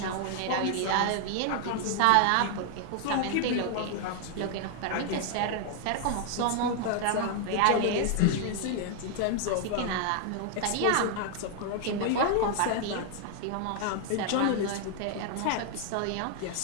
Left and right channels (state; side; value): different; both; correlation 0.00